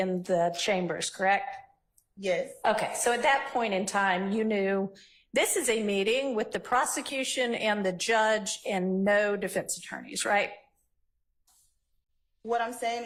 the chambers, correct? Yes, Okay. So at that point in time, you knew this is a meeting with the prosecution and the judge and no defense attorneys, right? what I'm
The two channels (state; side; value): identical; both; correlation 1.00